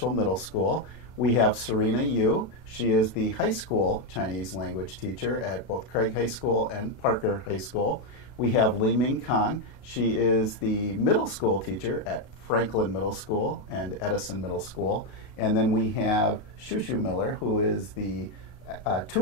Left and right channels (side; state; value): right; late; 32 ms